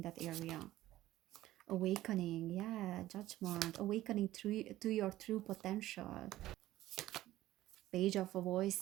that area. Awakening, yeah, Judgment, awakening to your true potential. Page of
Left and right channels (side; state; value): left; quieter; 15.1 dB